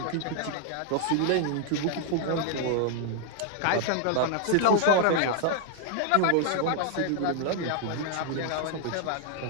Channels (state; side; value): different; both; correlation 0.00